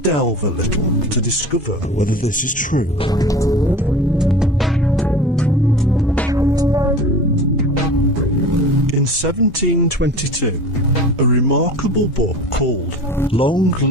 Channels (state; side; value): normal; both; correlation 0.38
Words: a little to discover whether this is true. In 1722, a remarkable book called Long